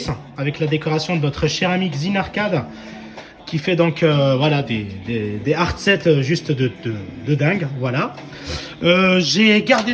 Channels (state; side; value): identical; both; correlation 1.00